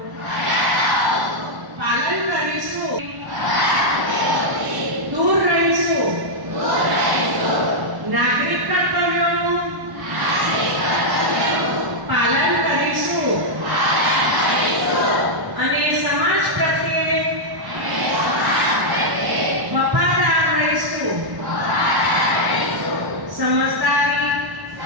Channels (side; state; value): left; late; 1.1 ms